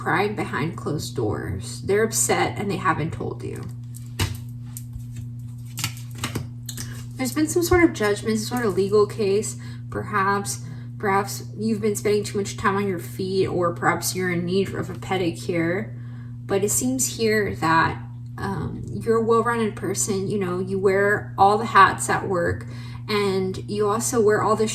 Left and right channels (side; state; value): both; identical; correlation 1.00